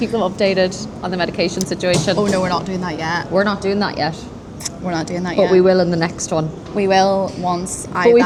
them updated on the medication situation. Oh no, we're not doing that yet. We're not doing that yet, We're not doing that yet. but we will in the next one. We will once I But we've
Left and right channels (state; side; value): identical; both; correlation 1.00